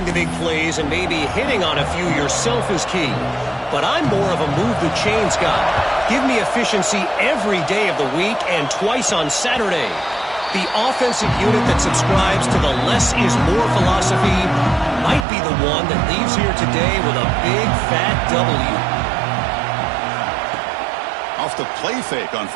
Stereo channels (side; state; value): left; drops out; at 15.2 s